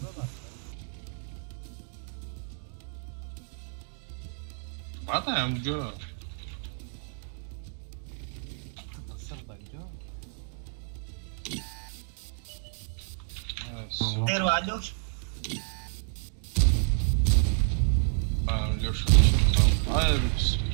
بعد همونجا خیر و علیوش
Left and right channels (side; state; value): left; silent; 58 dB below the other